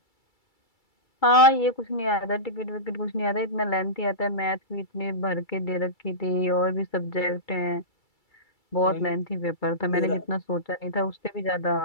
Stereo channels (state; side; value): late; right; 2.3 ms